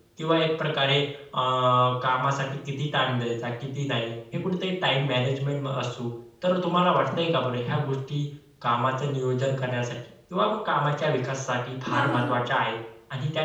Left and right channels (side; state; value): both; identical; correlation 1.00